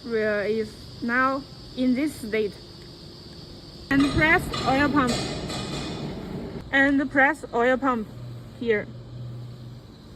is now in this state. And press oil pump. And press oil pump here.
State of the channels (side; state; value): both; identical; correlation 1.00